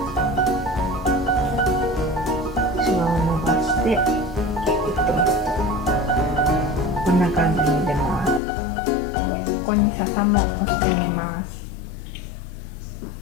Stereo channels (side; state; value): right; drops out; at 8.4 s